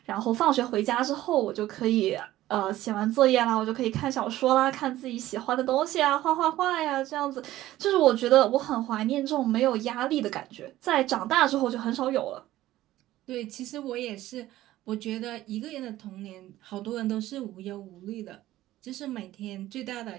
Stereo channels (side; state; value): left; quieter; 15.1 dB